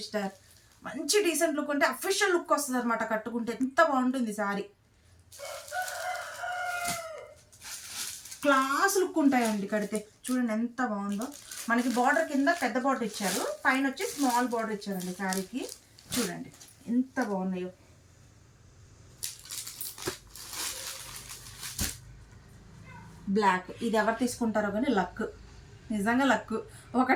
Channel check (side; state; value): both; identical; correlation 1.00